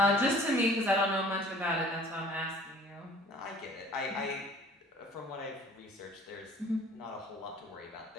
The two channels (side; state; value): both; normal; correlation 0.50